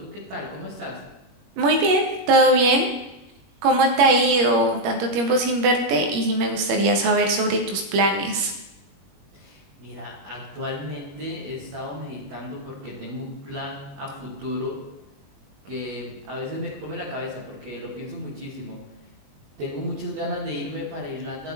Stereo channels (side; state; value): left; late; 21 ms